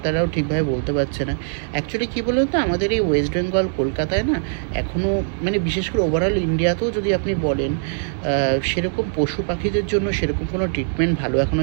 ঠিকভাবে বলতে পারছে না অ্যাকচুয়ালি কী বলুন তো। আমাদের এই ওয়েস্ট বেঙ্গল, কলকাতায় না এখনও, মানে বিশেষ করে ওভারঅল ইন্ডিয়াতেও যদি আপনি বলেন, সেরকম পশু পাখিদের জন্য সেরকম কোনো ট্রিটমেন্ট ভালো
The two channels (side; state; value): left; silent; digital silence